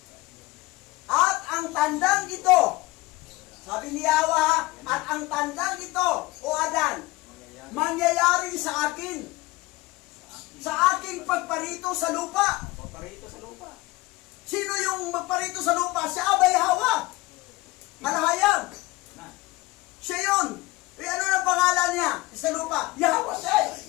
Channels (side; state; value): right; quieter; 20.5 dB